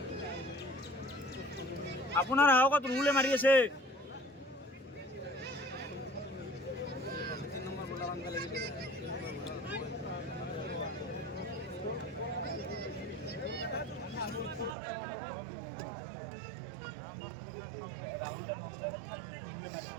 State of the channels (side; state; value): left; drops out; at 14.8 s